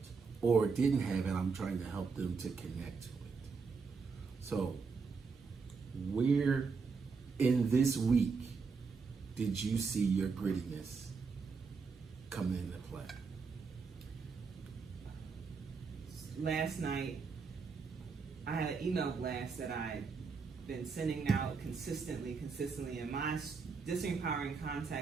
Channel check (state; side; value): quieter; left; 5.1 dB